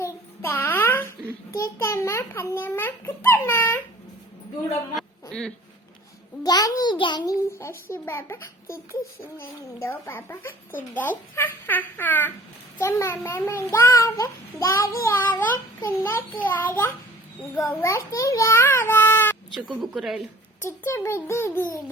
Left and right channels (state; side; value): normal; both; correlation 0.49